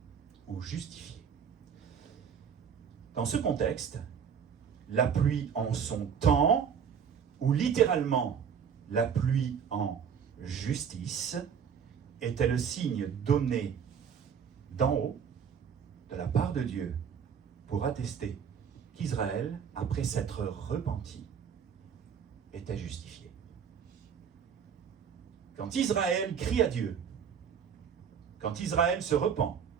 ou justifier. Dans ce contexte, la pluie en son temps, ou littéralement la pluie en justice, était le signe donné d'en haut, de la part de Dieu, pour attester qu'Israël, après s'être repenti, était justifié. Quand Israël crie à Dieu, quand Israël se repent,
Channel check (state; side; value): quieter; left; 7.3 dB